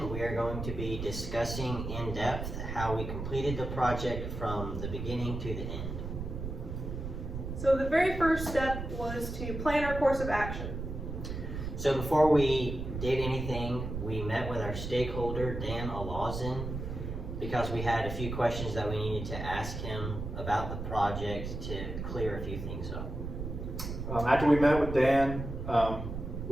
we are going to be discussing in depth how we completed the project from the beginning to the end. So the very first step was to plan our course of action. So before we did anything, we met with our stakeholder, Dan Alazin, because we had a few questions that we needed to ask him about the project to clear a few things up. After we met with Dan,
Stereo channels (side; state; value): right; noise; rumble, 6 dB below the sound